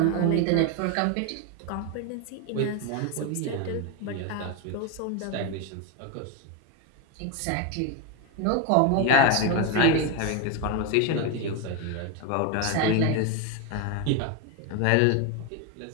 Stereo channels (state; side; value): different; both; correlation 0.02